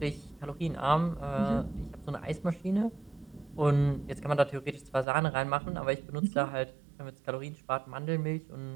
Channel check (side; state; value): left; drops out; at 5.1 s